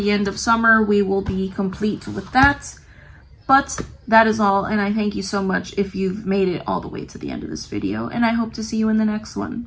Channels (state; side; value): identical; both; correlation 1.00